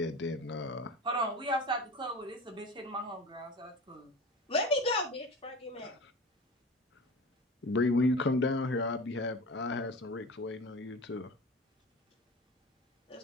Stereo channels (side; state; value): both; normal; correlation 0.33